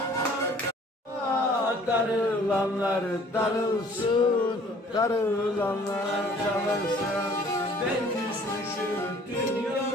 Darılanlar darılsın, darılanlar darılsın. Ben düşmüşüm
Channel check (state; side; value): normal; both; correlation 0.54